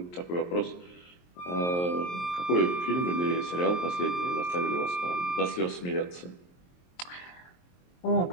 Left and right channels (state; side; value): late; right; 23 ms